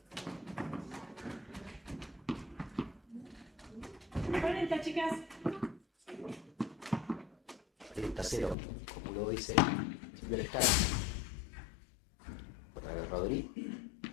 40, chicas. 30-0, como lo dice Silvia Lescano. Otra vez Rodri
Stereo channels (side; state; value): right; drops out; at 8.6 s